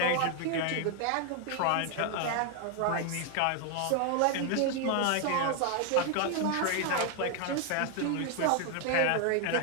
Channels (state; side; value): different; both; correlation 0.01